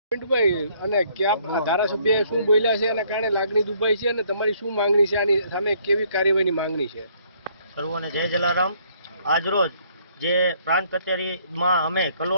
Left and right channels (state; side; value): inverted; both; correlation -0.65